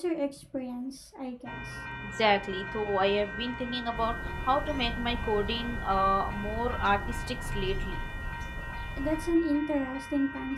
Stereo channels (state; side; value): identical; both; correlation 1.00